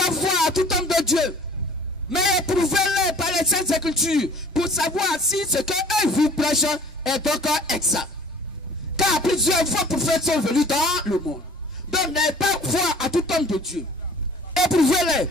foi à tout homme de Dieu, mais éprouvez-les par les saintes écritures, pour savoir si ce qu'eux vous prêchent est encore exact. Car plusieurs faux prophètes sont venus dans le monde. Donc n'ayez pas foi à tout homme de Dieu. Éprouvez-les.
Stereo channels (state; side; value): normal; both; correlation 0.49